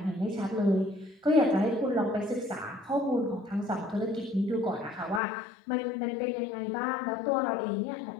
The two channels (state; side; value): drops out; right; at 5.2 s